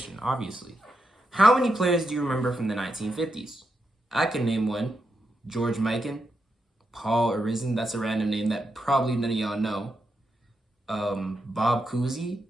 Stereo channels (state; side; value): normal; both; correlation 0.84